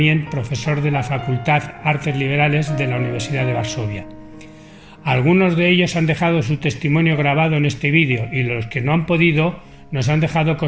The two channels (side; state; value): both; identical; correlation 1.00